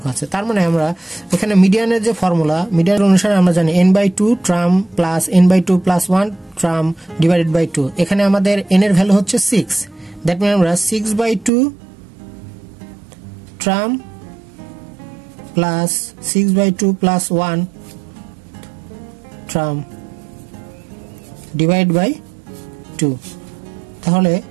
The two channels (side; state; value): left; drops out; at 11.5 s